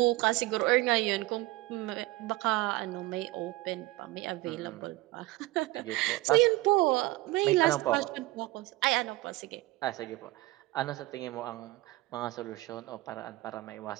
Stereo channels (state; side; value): quieter; left; 19.3 dB